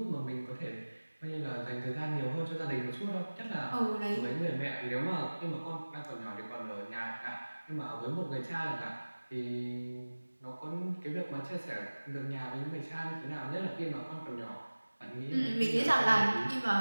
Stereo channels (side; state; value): both; inverted; correlation -1.00